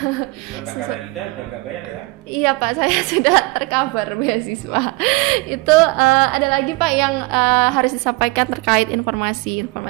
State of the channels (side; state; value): left; quieter; 24.3 dB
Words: Mbak Karanida udah nggak bayar ya? Iya Pak, saya sudah tercover beasiswa. Itu ada lagi Pak yang harus disampaikan terkait informasi.